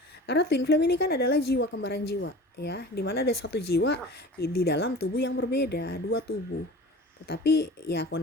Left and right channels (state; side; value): normal; both; correlation 0.39